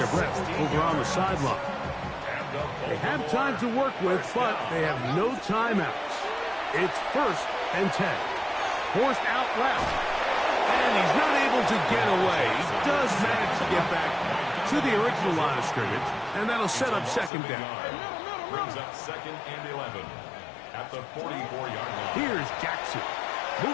breath over on the sideline. They have time to work with, but they have no timeouts. It's first and 10. Forced out left. And he's not able to get away. He does manage to get back to the original line of scrimmage, and that'll set up second down. Brings up second and 11 at the 44-yard line. Here's Jackson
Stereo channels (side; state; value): right; drops out; at 17.3 s